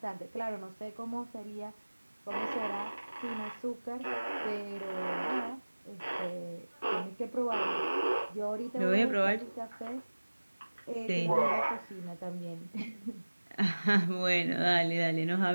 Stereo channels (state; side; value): inverted; both; correlation -1.00